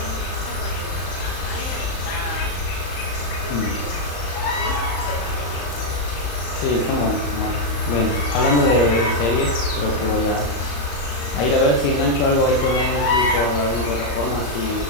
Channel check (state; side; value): late; right; 35 ms